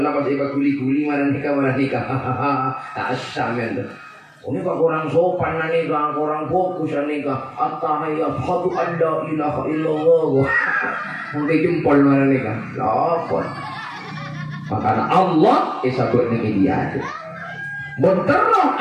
pas iba kuli marah nikah asam kan ini pak orang sopan nikah orang fokus nikah at-tahiyat hadu an la ilaha illallah sampai jempol marah nikah lapor makanya Allah isabut nikah dia Benterang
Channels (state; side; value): identical; both; correlation 1.00